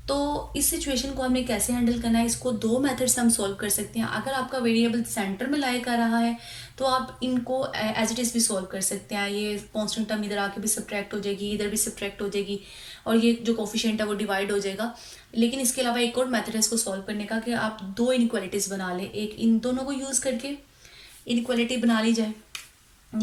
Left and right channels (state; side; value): identical; both; correlation 1.00